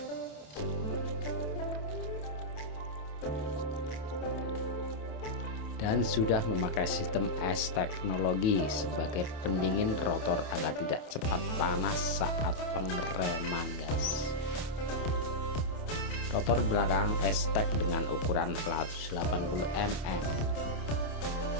Dan sudah memakai sistem S teknologi sebagai pendingin rotor agar tidak cepat panas saat pengereman guys. Rotor belakang S-Tech dengan ukuran 180 mm.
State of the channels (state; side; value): late; right; 27 ms